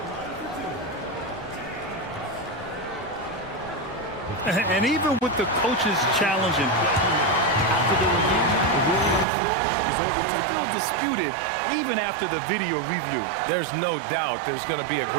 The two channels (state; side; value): drops out; left; at 9.2 s